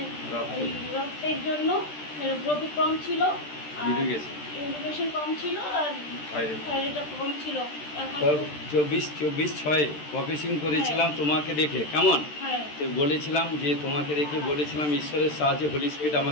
রক্তের জন্য হিমোগ্লোবিন কম ছিল, ইউরিনেশন কম ছিল, আর থাইরয়েডটা কম ছিল। এখন 24/6 প্রফেসিং করেছিলাম তোমাকে দেখে, কেমন? তো বলেছিলাম যে তোমাকে দেখে বলেছিলাম ঈশ্বরের সাহায্যে হোলি স্পিরিট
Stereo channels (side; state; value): right; late; 13 ms